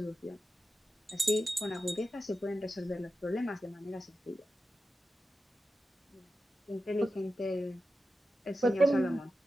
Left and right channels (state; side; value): normal; both; correlation 0.91